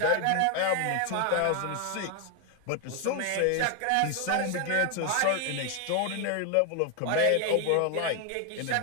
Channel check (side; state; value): both; different; correlation 0.01